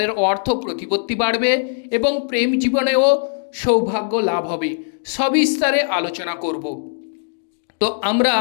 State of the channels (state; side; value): silent; right; digital silence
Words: অর্থ প্রতিপত্তি বাড়বে এবং প্রেম জীবনেও সৌভাগ্য লাভ হবে। সবিস্তারে আলোচনা করব। তো আমরা